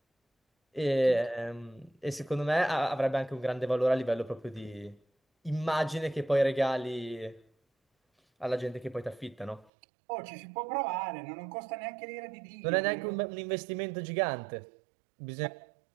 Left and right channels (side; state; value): left; drops out; at 9.7 s